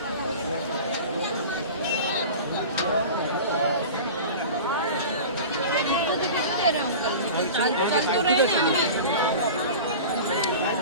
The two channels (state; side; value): inverted; both; correlation -0.34